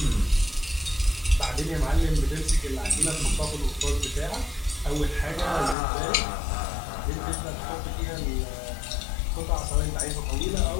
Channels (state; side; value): drops out; right; at 5.8 s